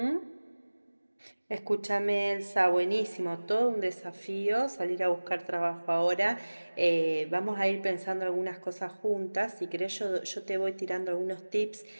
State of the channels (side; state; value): both; inverted; correlation -1.00